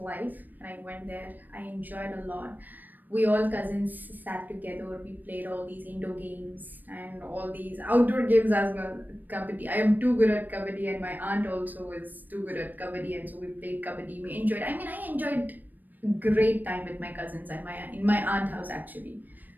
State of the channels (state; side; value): late; left; 0.088 ms